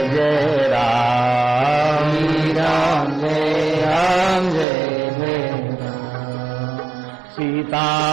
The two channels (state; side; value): drops out; left; at 4.7 s